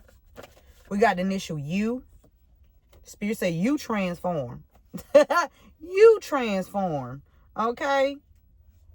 We got the initial U. Spirit say you transform. You transform. Okay?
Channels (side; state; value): both; identical; correlation 1.00